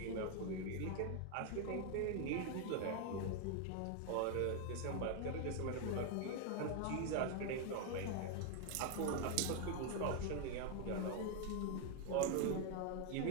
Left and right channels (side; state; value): both; different; correlation 0.00